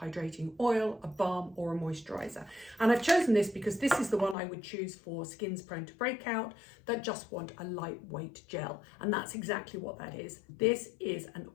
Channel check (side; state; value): right; drops out; at 4.4 s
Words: oil, a balm or a moisturizer. And I've chosen this because this is the one I would choose for skins prone to breakout that just want a lightweight gel. And that's exactly what that is. This is an